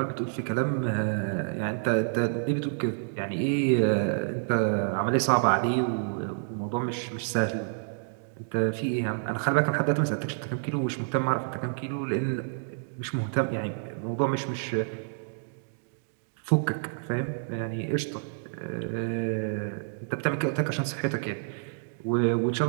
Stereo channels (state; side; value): silent; left; digital silence